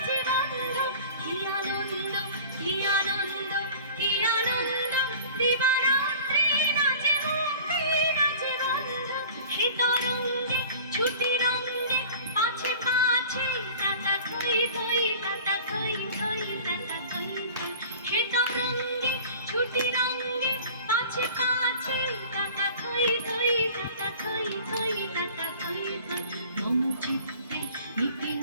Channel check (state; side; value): inverted; both; correlation -0.43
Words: বন্ধ কি আনন্দ কি আনন্দ কি আনন্দ দিবারাত্রি নাচে মুক্তি নাচে বন্ধ হে তরঙ্গে ছুটি রঙ্গে পাছে পাছে তাতা থই থই তাতা থই থই তাতা থই থই হে তরঙ্গে ছুটি রঙ্গে পাছে পাছে তাতা থই থই তাতা থই থই তাতা থই থই মম চিত্তে নিতে